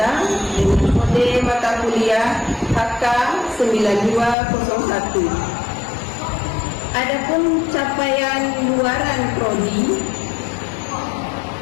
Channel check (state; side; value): drops out; right; at 4.4 s